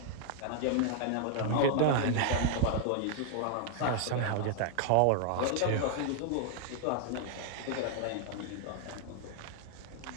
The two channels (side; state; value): both; different; correlation 0.00